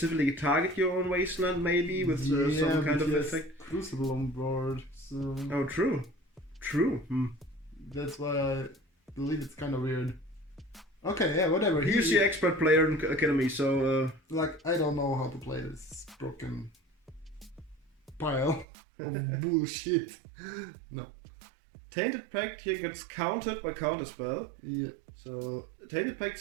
target your own wasteland, maybe with some kind of effect. Crucible on board. So oh, true. That's why I believe it's kind of weird. Okay, yeah, whatever. He's the expert player in Academy, so like I don't know how to play this broken pile of bullshit. No. Tainted Pact here gets countered by Counterspell. Yeah. So Tainted Pact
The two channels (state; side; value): drops out; left; at 18.7 s